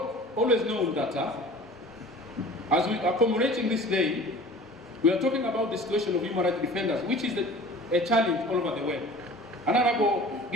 always known that as we are commemorating this day, we are talking about the situation of human rights defenders, which is a challenge all over the world. Honorable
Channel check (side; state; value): both; normal; correlation 0.43